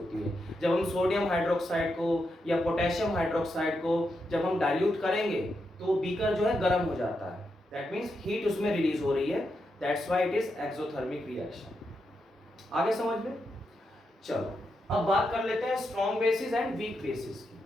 है। जब हम सोडियम हाइड्रोक्साइड को या पोटेशियम हाइड्रोक्साइड को जब हम डाइल्यूट करेंगे तो बीकर जो है गर्म हो जाता है, दैट मीन्स हीट उसमें रिलीज हो रही है, that's why it is exothermic reaction. आगे समझ में? चलो अब बात कर लेते हैं strong bases and weak bases की।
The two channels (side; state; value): both; normal; correlation 0.84